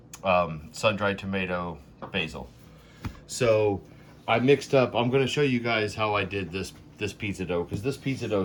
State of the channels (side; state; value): both; identical; correlation 1.00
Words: sun-dried tomato, basil. So I mixed up, I'm going to show you guys how I did this pizza dough, because this pizza